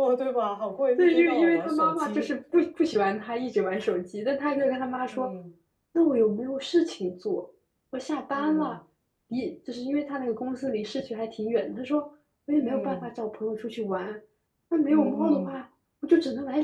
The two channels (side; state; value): both; identical; correlation 1.00